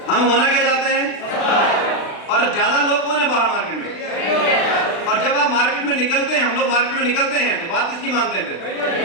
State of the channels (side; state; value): right; late; 36 ms